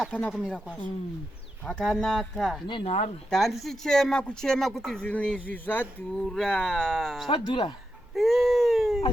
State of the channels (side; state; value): both; normal; correlation 0.86